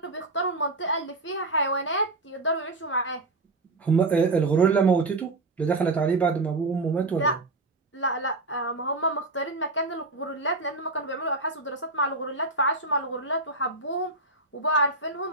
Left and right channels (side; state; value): left; quieter; 3.1 dB